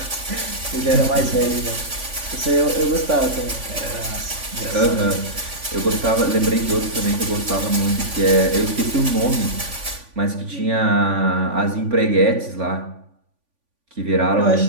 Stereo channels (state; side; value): late; left; 3.5 ms